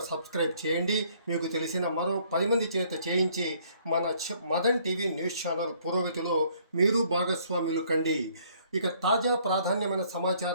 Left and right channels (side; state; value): both; inverted; correlation -0.63